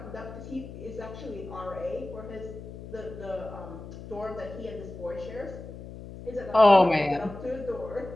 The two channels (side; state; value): left; noise; hum, 13 dB below the sound